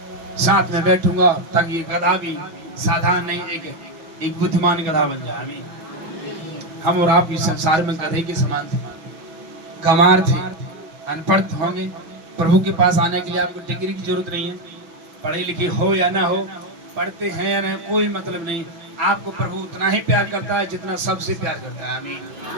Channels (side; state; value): left; late; 6.2 ms